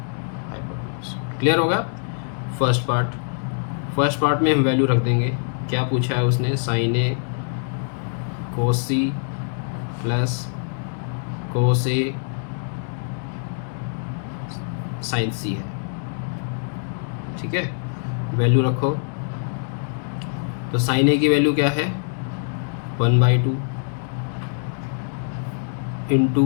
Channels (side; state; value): right; silent; digital silence